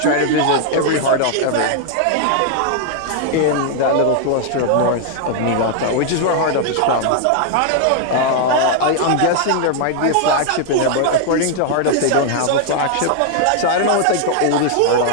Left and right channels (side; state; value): both; different; correlation 0.00